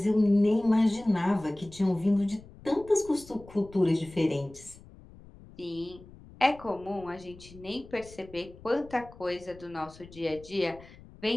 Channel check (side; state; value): left; noise; rumble, 20 dB below the sound